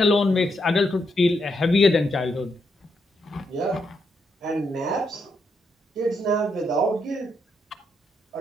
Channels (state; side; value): normal; both; correlation 0.79